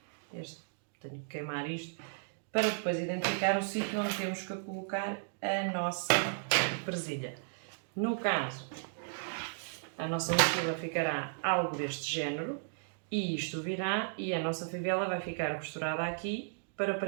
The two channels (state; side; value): silent; left; digital silence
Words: tenho que queimar isto, para depois identificar o sítio onde temos que colocar a nossa presilha. No caso, a nossa mochila ficará algo deste género e isto virá e a nossa fivela vai ficar costurada aqui para